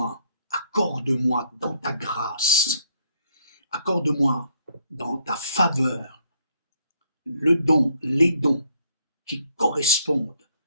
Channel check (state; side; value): inverted; both; correlation -0.68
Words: accorde-moi dans ta grâce, accorde-moi dans ta faveur le don, les dons qui correspondent